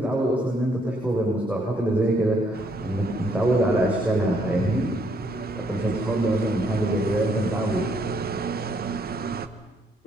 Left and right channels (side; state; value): both; normal; correlation 0.70